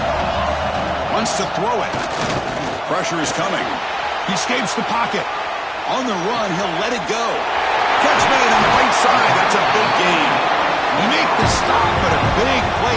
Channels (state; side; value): identical; both; correlation 1.00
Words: Wants to throw it. Pressure is coming. He escapes the pocket. On the run, he'll let it go. Catch made on the right side. That's a big gain. He make the stop, but a big